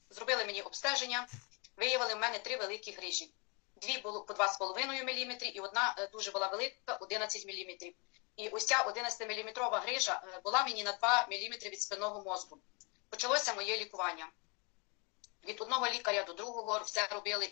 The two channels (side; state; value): right; quieter; 31.8 dB